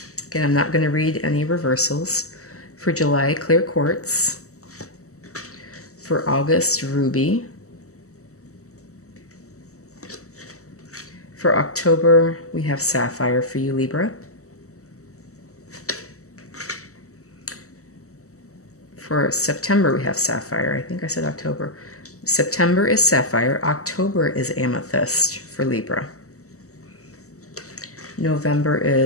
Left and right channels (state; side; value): late; right; 0.65 ms